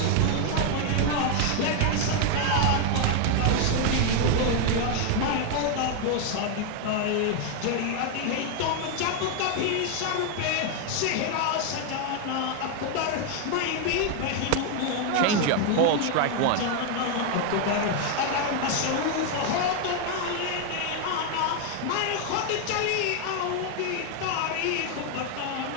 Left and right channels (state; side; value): different; both; correlation 0.01